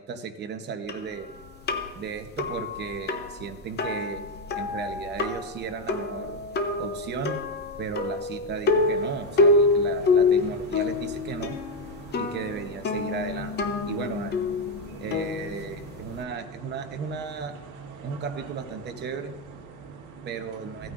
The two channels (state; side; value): normal; both; correlation 0.05